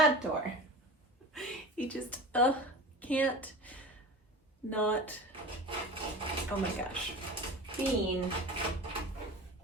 door. He just can't not. Oh my gosh. Bean.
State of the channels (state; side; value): normal; both; correlation 0.33